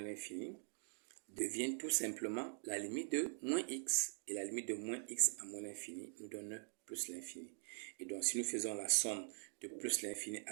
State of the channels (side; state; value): left; silent; digital silence